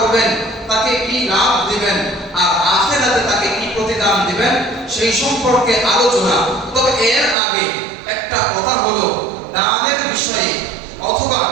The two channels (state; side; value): drops out; left; at 7.4 s